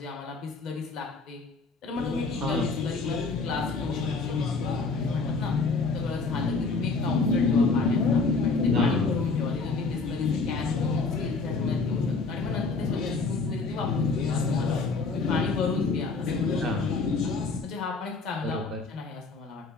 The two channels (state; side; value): quieter; right; 4.1 dB